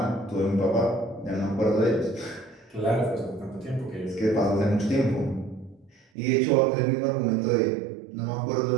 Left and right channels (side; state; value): left; drops out; at 6.1 s